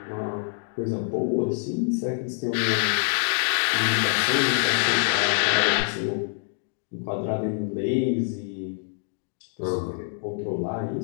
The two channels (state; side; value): silent; right; 61 dB below the other